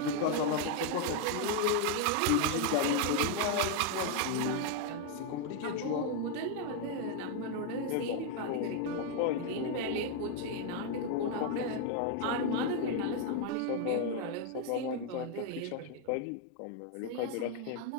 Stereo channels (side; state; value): both; different; correlation 0.01